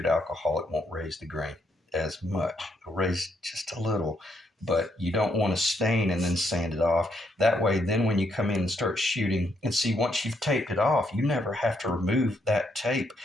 alcohol, it won't raise the grain as much. It'll raise just a little, but you don't want to stain and then sand it off. That way, then when you come in and start shooting, and see, once you've taped it off, you never have to remove that tape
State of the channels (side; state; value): both; normal; correlation 0.75